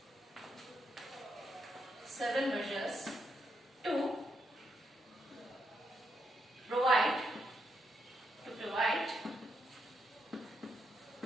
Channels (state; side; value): normal; both; correlation 0.80